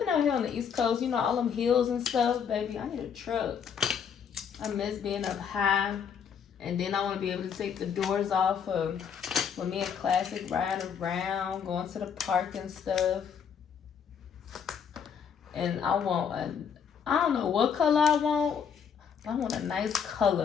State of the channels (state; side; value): quieter; right; 7.3 dB